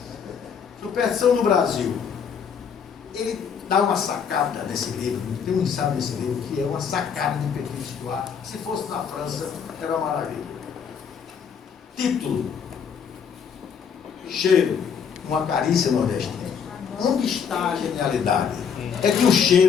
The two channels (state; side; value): quieter; right; 6.9 dB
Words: Superstição no Brasil. Ele dá uma sacada nesse livro, tem um ensaio nesse livro que é uma sacada de Petit Histoire. Se fosse na França, era uma maravilha. Título: cheiro, uma carícia nordestina. Onde está a genialidade? É que o